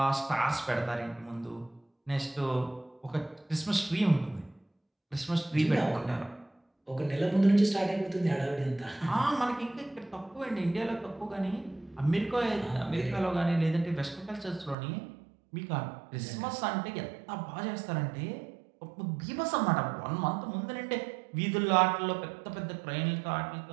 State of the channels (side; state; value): left; drops out; at 14.8 s